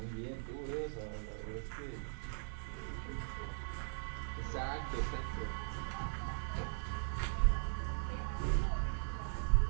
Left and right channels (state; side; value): silent; left; digital silence